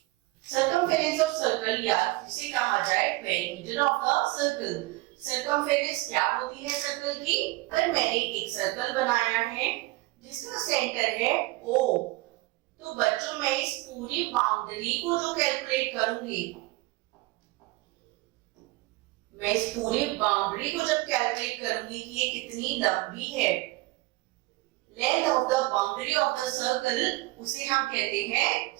circumference of circle या जिसे कहा जाए perimeter of the circle. Circumference क्या होती है सर्कल की, अगर मैंने एक सर्कल बनाया है जिसका सेंटर है O, तो बच्चों मैं इस पूरी बाउंड्री को जो कैलकुलेट करूंगी, मैं इस पूरी बाउंड्री को जब कैलकुलेट करूंगी कि ये कितनी लंबी है, length of the boundary of the circle, उसे हम कहते हैं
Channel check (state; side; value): quieter; left; 20.8 dB